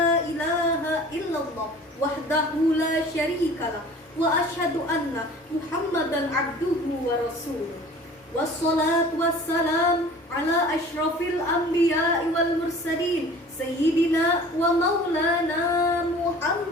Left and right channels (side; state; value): both; normal; correlation 0.45